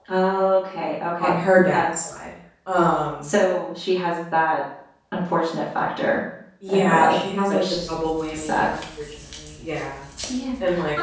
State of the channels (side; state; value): both; identical; correlation 1.00